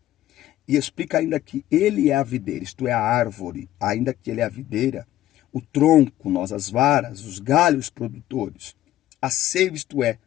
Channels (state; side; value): quieter; right; 13.7 dB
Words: E explica ainda que ele é a videira, isto é, a árvore, ainda que ele é a videira, o tronco, nós as varas, os galhos produtores. A seiva, isto é,